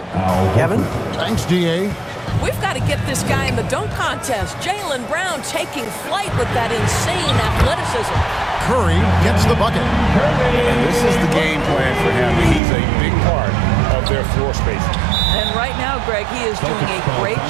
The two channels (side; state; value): left; drops out; at 12.6 s